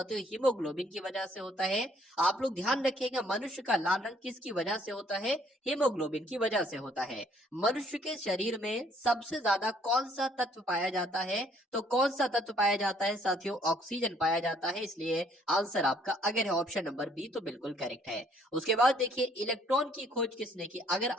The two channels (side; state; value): both; normal; correlation 0.63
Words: हीमोग्लोबिन की वजह से होता है। आप लोग ध्यान रखिएगा, मनुष्य का लाल रंग किसकी वजह से होता है? हीमोग्लोबिन की वजह से होता है। मनुष्य के शरीर में सबसे ज्यादा कौन सा तत्व पाया जाता है? तो कौन सा तत्व पाया जाता है साथियों? ऑक्सीजन पाया जाता है। इसलिए आंसर आपका अगर है ऑप्शन नंबर बी तो बिल्कुल करेक्ट है। उसके बाद देखिए, इलेक्ट्रॉन की खोज किसने की? अगर